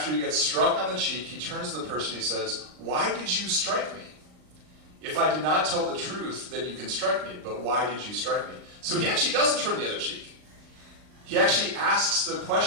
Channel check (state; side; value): late; left; 39 ms